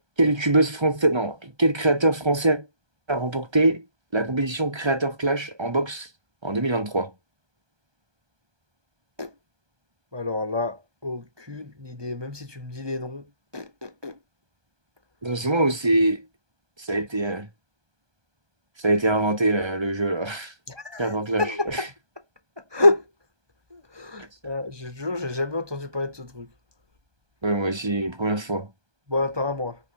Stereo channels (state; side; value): late; left; 1.3 ms